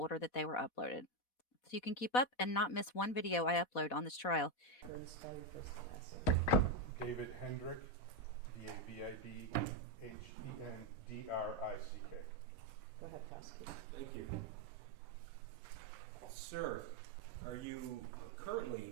that they were uploaded. So you can keep up and not miss one video I upload on this trial. Spell your first and last name. David Hendrick, D-A-V-I-D-H-E-N-D-R-I-C-K. Go ahead, prosecutor. Thank you. Sir, are you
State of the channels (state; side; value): late; right; 4.1 ms